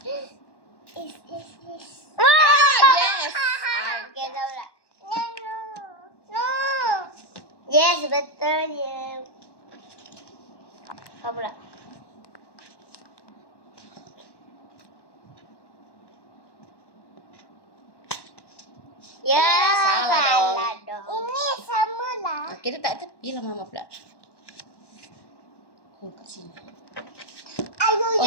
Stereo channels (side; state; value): right; late; 1.1 ms